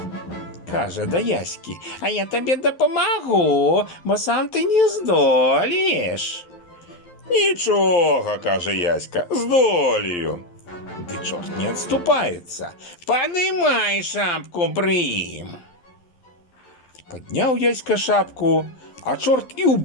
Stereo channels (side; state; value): right; late; 11 ms